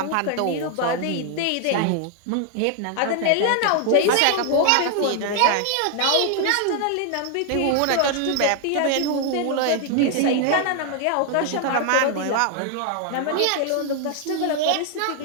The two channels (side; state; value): both; different; correlation 0.00